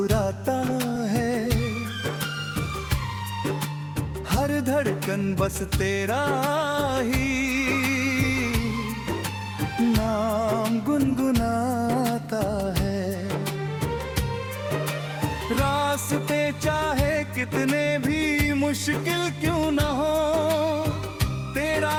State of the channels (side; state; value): both; identical; correlation 1.00